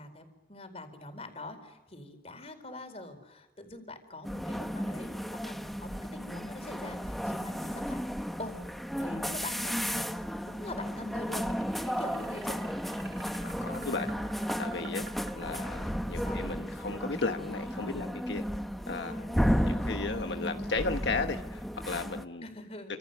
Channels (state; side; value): normal; both; correlation 0.69